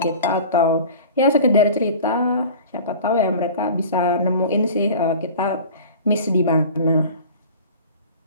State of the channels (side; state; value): both; inverted; correlation -0.40